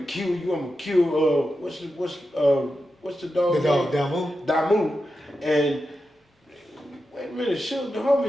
kill you. I'm gonna kill what's the dog? The dog, Damu. Damu. And wait a minute, Suge, the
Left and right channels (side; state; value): both; normal; correlation 0.90